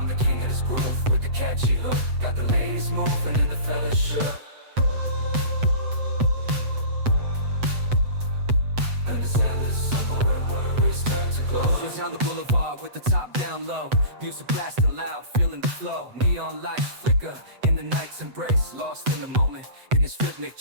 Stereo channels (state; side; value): late; left; 8.0 ms